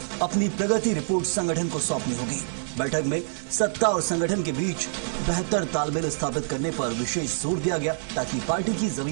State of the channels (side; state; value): left; silent; 58 dB below the other